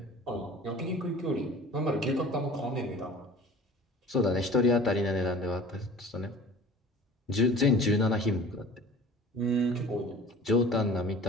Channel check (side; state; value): both; normal; correlation 0.43